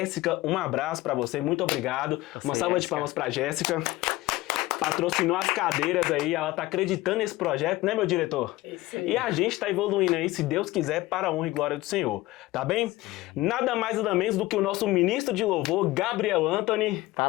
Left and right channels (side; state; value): right; quieter; 18.5 dB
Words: um abraço para você, muito obrigado. Uma salva de palmas para Jéssica. Patrocinou as cadeiras aí, ela tá acreditando nesse projeto, né, meu diretor? Isso aí. E a gente tá evoluindo aí, se Deus quiser, para a honra e glória do Senhor, tá bem? Sim. Nada mais nada menos do que o nosso ministro de louvor, Gabriel Anthony.